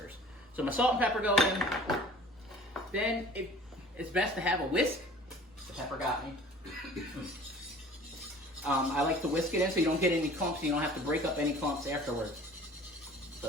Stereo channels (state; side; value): normal; both; correlation 0.47